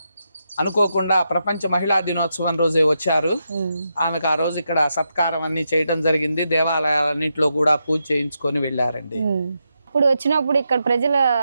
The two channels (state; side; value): inverted; both; correlation -0.84